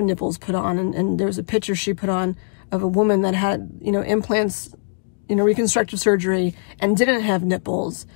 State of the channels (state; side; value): silent; right; digital silence